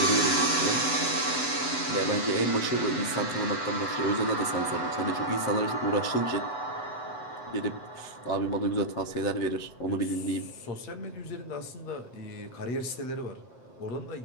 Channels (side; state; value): right; late; 8.0 ms